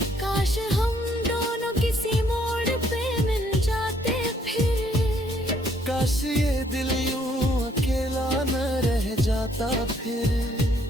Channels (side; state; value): both; normal; correlation 0.67